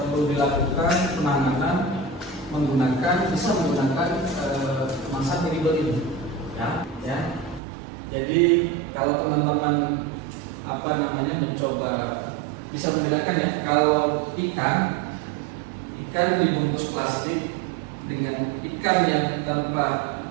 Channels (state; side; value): drops out; left; at 7.6 s